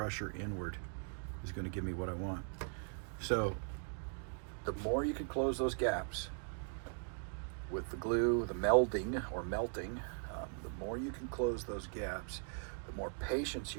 inward is going to give me what I want. So the more you can close those gaps with the glue, the melding or melting, the more you can close those gaps, the more patience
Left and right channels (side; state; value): left; silent; 51 dB below the other